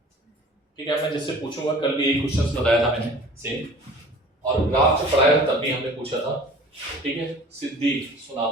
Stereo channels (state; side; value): normal; both; correlation 0.45